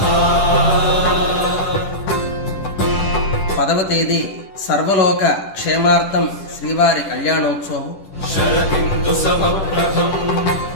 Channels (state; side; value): late; right; 10 ms